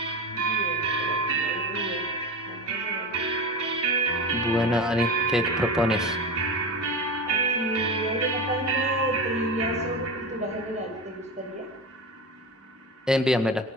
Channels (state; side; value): normal; both; correlation 0.25